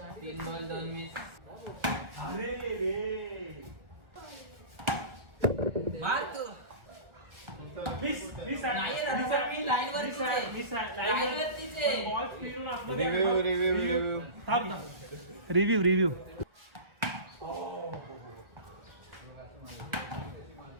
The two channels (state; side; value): late; left; 1.6 ms